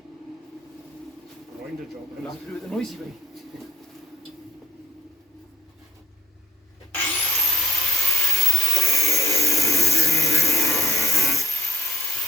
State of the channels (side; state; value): both; normal; correlation 0.71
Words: Grinder job. We'll have to do it the noisy way.